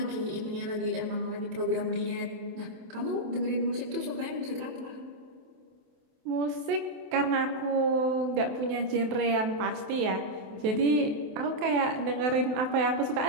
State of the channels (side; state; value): left; late; 28 ms